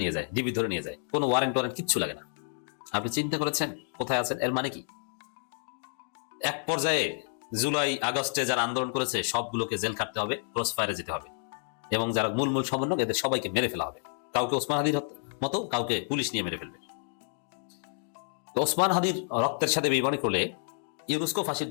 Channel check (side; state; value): right; silent; digital silence